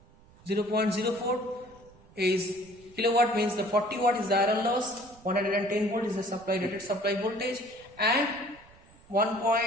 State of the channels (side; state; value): right; noise; rumble, 26 dB below the sound